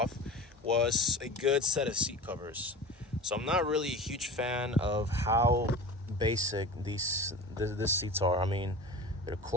was a good set of seat covers. So I'm not really a huge fan of how basic these seats are. I mean, the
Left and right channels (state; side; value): normal; both; correlation 0.35